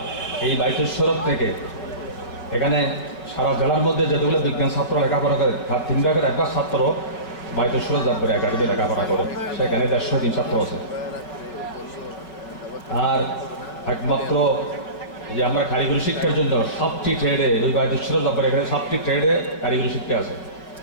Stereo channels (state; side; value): late; right; 5.5 ms